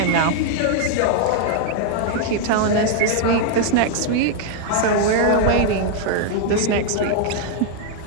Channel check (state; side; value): different; both; correlation 0.00